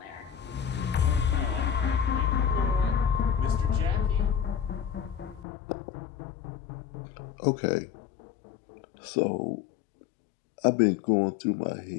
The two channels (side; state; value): right; drops out; at 5.5 s